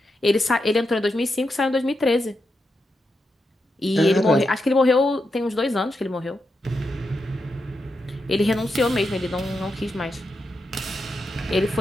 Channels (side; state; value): both; normal; correlation 0.86